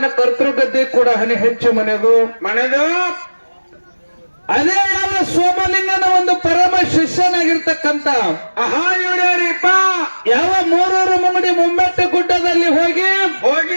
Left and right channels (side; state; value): both; inverted; correlation -1.00